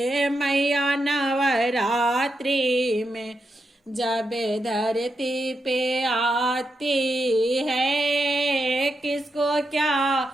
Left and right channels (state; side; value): normal; both; correlation 0.85